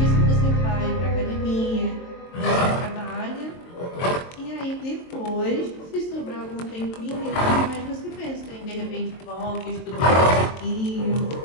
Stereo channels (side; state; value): right; late; 23 ms